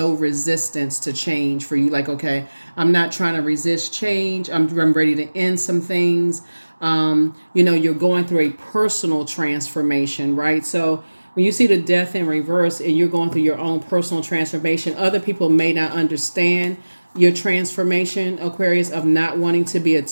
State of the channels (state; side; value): inverted; both; correlation -1.00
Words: resistance to change for you. Like, okay, I'm not trying to resist change. I'm ready to end some things. You're going through a personal transformation, right? So when you see the death in reverse and you're going through your own personal transformation, other people may not understand your transformation, Aquarius, of not wanting to be